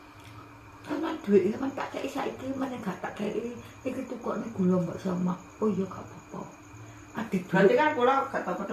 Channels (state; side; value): identical; both; correlation 1.00